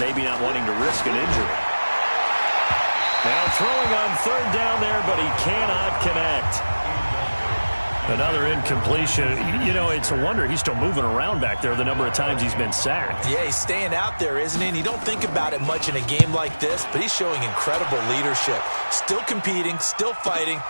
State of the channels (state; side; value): inverted; both; correlation -1.00